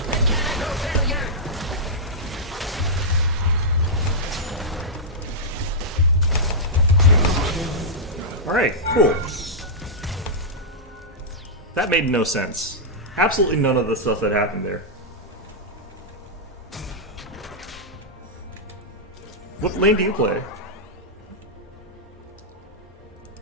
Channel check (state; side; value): normal; both; correlation -0.10